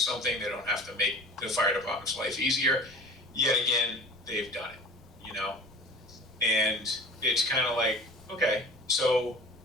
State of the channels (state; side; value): normal; both; correlation 0.41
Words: they don't have to make the fire department's life easier. Yet again, they've done it, And it's kind of like, okay, so